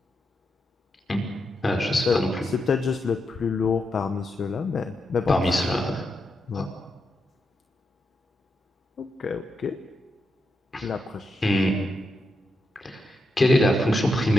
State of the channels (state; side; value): normal; both; correlation 0.84